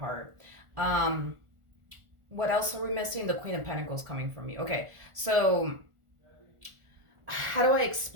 What else are we missing? The Queen of Pentacles coming from you. Okay, so how do I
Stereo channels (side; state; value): left; late; 1.4 ms